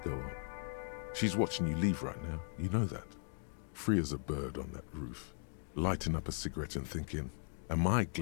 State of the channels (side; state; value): right; silent; 52 dB below the other